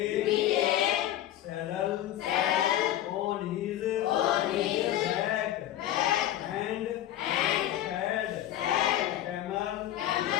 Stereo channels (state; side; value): quieter; right; 12.8 dB